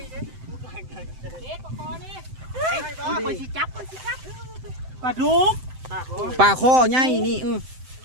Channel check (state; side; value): late; left; 7.8 ms